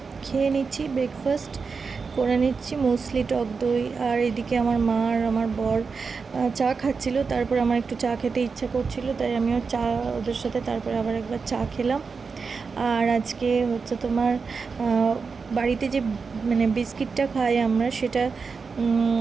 খেয়ে নিচ্ছি, ব্রেকফাস্ট করে নিচ্ছি, মুসলি, টক দই। আর এদিকে আমার মা আর আমার বর চা খাচ্ছিল। তারপর আমার একটু চা খেতে ইচ্ছা করছিল, তাই আমিও চা ওদের সাথে তারপরে আবার একবার চা খেলাম। আর আজকে হচ্ছে তোমার বাড়িতে যে বিস্কিটটা খাই আমরা, সেটা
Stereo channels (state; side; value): quieter; left; 5.0 dB